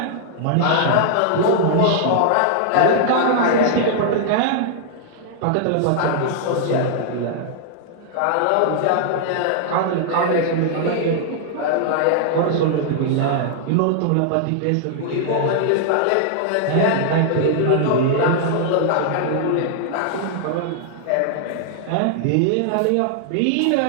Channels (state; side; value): different; both; correlation -0.01